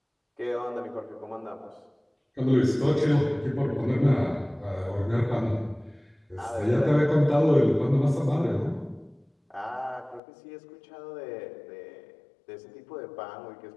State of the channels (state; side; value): drops out; right; at 10.2 s